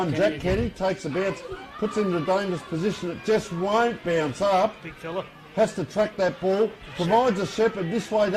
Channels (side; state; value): both; identical; correlation 1.00